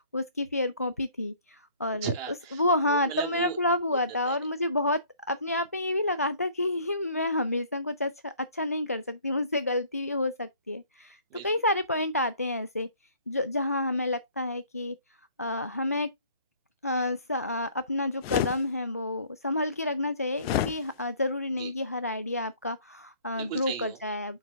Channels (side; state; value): both; inverted; correlation -0.55